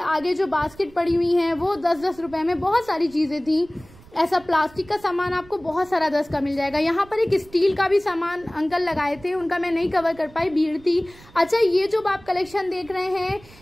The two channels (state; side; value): noise; right; rumble, 23 dB below the sound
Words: आगे जो बास्केट पड़ी हुई हैं वो 10-10 रुपए में। बहुत सारी चीजें थी। ऐसा प्लास्टिक का सामान आपको बहुत सारा 10 का मिल जाएगा। यहाँ पर एक स्टील का भी सामान अंकल लगाए थे, उनका मैं नहीं कवर कर पाई, भीड़ थी। अच्छा, ये जो आप कलेक्शन देख रहे हैं